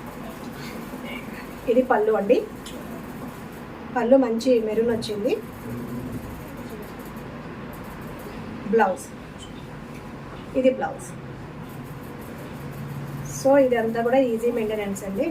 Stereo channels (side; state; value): both; identical; correlation 1.00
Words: ఇది పళ్ళు అండి, పళ్ళు మంచి మెరూన్ వచ్చింది. బ్లౌజ్, ఇది బ్లౌజ్. సో ఇదంతా కూడా ఈజీ మెయింటెనెన్స్ అండి,